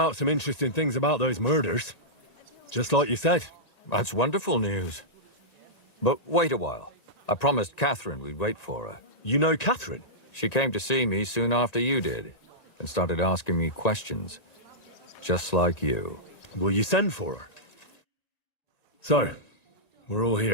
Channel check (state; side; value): late; right; 1.9 ms